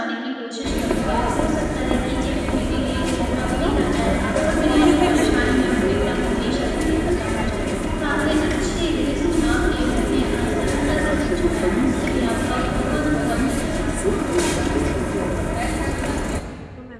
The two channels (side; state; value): both; identical; correlation 1.00